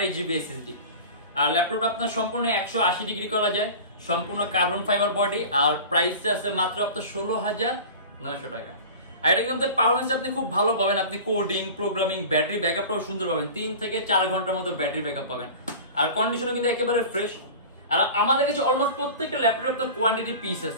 এসএসডি। আর ল্যাপটপটা আপনার সম্পূর্ণ 180 ডিগ্রি করা যায়, সম্পূর্ণ কার্বন ফাইবার বডি। আর প্রাইস আছে মাত্র আপনার 16,900 টাকা। আর এটা কিন্তু পারফরম্যান্স আপনি খুব ভালো পাবেন, আপনি কোডিং, প্রোগ্রামিং, ব্যাটারি ব্যাকআপটাও সুন্দর পাবেন, 3 থেকে 4 ঘন্টার মতো ব্যাটারি ব্যাকআপ পাবেন। আর কন্ডিশনও কিন্তু একেবারে ফ্রেশ। আর আমাদের কাছে অলমোস্ট প্রত্যেকটা ল্যাপটপে আপনার কোয়ান্টিটি পিস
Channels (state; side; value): inverted; both; correlation -0.36